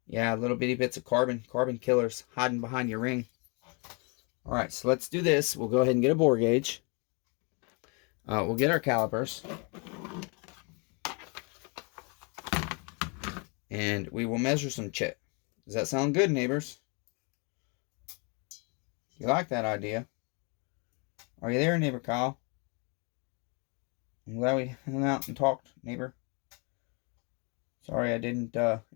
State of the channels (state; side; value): quieter; right; 33.8 dB